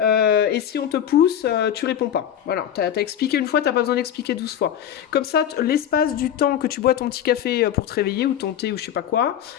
si on te pousse, tu réponds pas. Voilà, t'as expliqué une fois, t'as pas besoin d'expliquer 12 fois. Comme ça, l'espace du temps que tu bois ton petit café pour te réveiller, ou ton thé, ou je sais pas quoi,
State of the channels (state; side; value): quieter; right; 9.9 dB